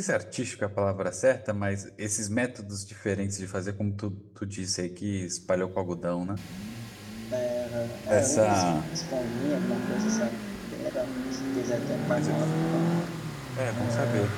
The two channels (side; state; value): both; identical; correlation 1.00